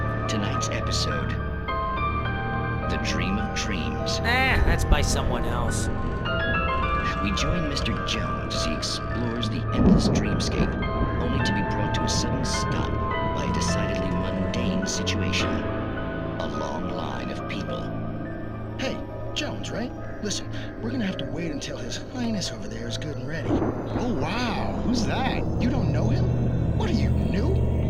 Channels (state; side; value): identical; both; correlation 1.00